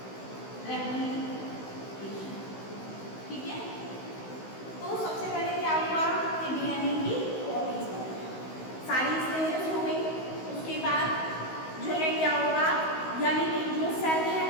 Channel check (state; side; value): late; right; 16 ms